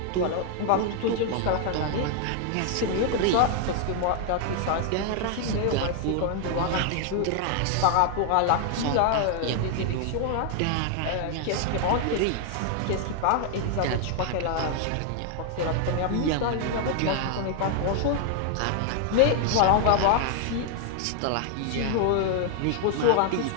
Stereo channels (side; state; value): both; different; correlation 0.00